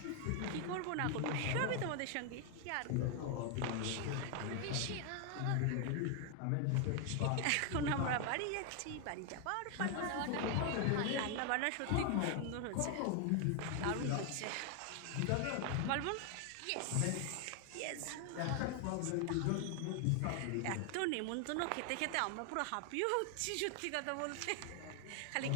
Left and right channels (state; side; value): different; both; correlation 0.00